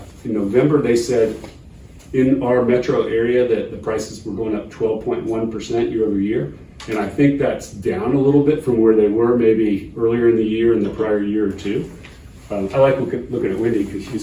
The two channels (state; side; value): identical; both; correlation 1.00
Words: in November, they said in our metro area that the prices were going up 12.1% year over year. And I think that's down a little bit from where they were maybe earlier in the year and the prior year or two. I like looking at Wendy because